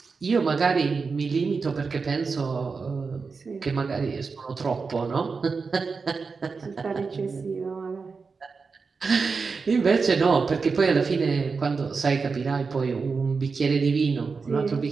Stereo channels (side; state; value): left; quieter; 4.8 dB